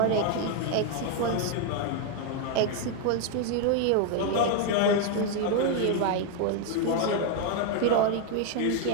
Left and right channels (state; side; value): different; both; correlation 0.01